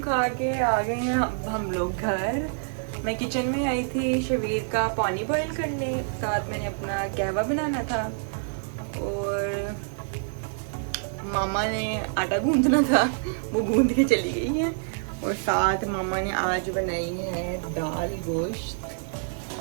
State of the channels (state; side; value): silent; left; digital silence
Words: खा के आ गए हैं अब हम लोग घर। मैं किचन में आई थी शबीर का पानी बॉईल करने, साथ मैंने अपना कहवा बनाना था, और मामा ने आटा गूंदना था, वो गूंद के चली गई है। और साथ मामा ने आज बनाई है दाल गोश्त